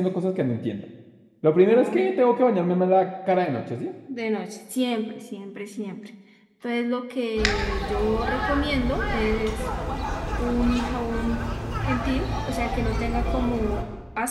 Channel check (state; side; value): identical; both; correlation 1.00